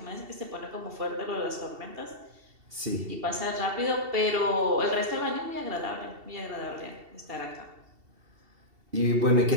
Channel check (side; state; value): left; late; 2.7 ms